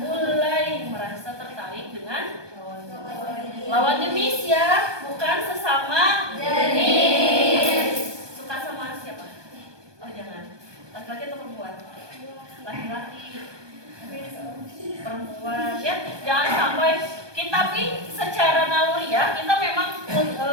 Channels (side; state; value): left; late; 1.2 ms